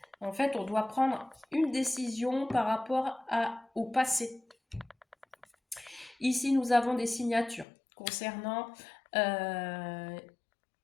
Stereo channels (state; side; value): drops out; right; at 7.7 s